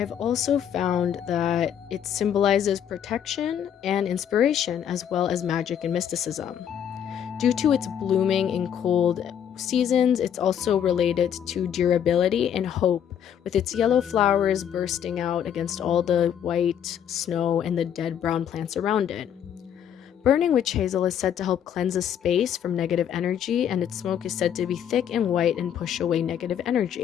also found that it symbolizes protection and inspiration, as well as magic and mysticism. Due to its blooming in cold seasons, it's also related to durability and hope, with its yellow flowers bursting out against all the white snow and the dead brown plants around it. Burning witch hazel is said to help cleanse a space from negative energy, and its smoke is said to be thick and white and push away negative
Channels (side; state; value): right; quieter; 9.1 dB